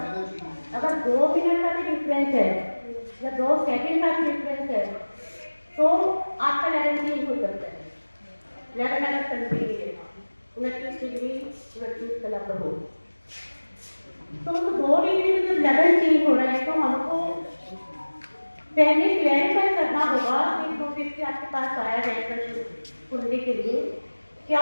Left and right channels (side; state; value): both; inverted; correlation -1.00